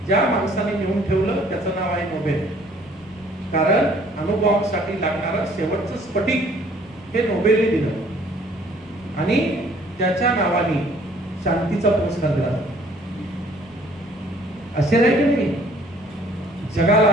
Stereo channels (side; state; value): both; normal; correlation 0.58